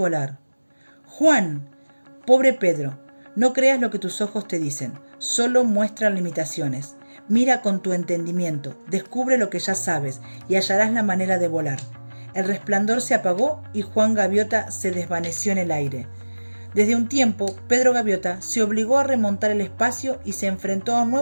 «Juan, pobre Pedro, no creas lo que tus ojos te dicen, solo muestran limitaciones. Mira con tu entendimiento, descubre lo que ya sabes y hallarás la manera de volar». El resplandor se apagó y Juan Gaviota se desvaneció en el aire. Desde un tiempo, Pedro Gaviota se obligó a remontar el espacio y se enfrentó a un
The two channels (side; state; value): both; inverted; correlation -1.00